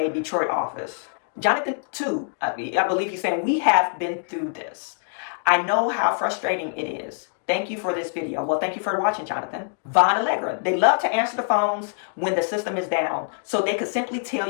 Detroit office. Jonathan, too, I believe he's saying, we have been through this. I know how frustrating it is. Thank you for this video. Well, thank you for watching, Jonathan. Von Allegra, they love to answer the phones when the system is down. So they could simply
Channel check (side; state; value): right; silent; 62 dB below the other